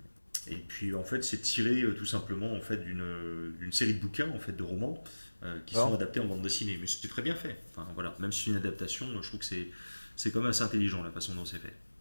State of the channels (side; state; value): both; inverted; correlation -1.00